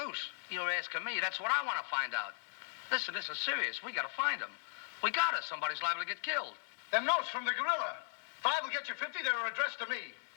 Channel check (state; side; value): silent; right; 53 dB below the other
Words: You're asking me. That's what I want to find out. Listen, this is serious. We got to find him. We got us. Somebody's liable to get killed. Them notes from the gorilla. If I will get you 50, they were addressed to me.